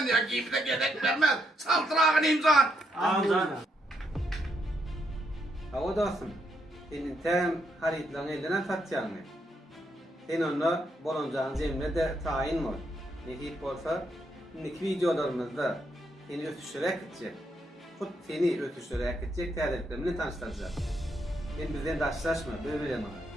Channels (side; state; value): both; normal; correlation 0.77